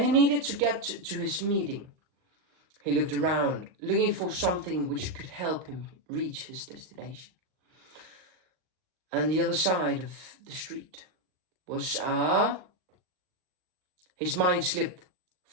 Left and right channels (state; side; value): late; left; 38 ms